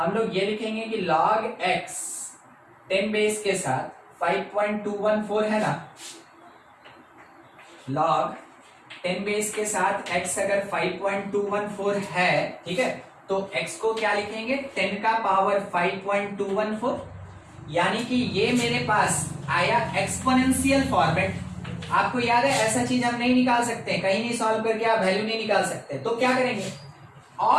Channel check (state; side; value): identical; both; correlation 1.00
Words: लोग ये लिखेंगे कि log x 10 बेस के साथ 5.214 है ना, log 10 बेस के साथ x अगर 5.214 है, ठीक है, तो x को क्या लिखेंगे, 10 का पावर 5.214, यानी कि ये मेरे पास आया एक्सपोनेंशियल फॉर्मेट। आपको याद है ऐसा चीज हम नहीं निकाल सकते, कहीं नहीं सॉल्व करके आप वैल्यू नहीं निकाल सकते, तो क्या करेंगे,